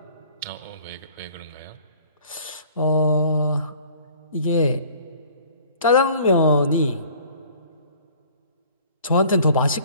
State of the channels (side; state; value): both; inverted; correlation -0.52